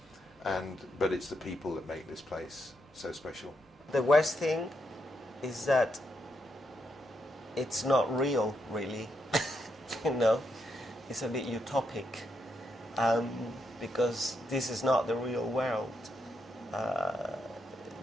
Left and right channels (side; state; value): both; normal; correlation 0.81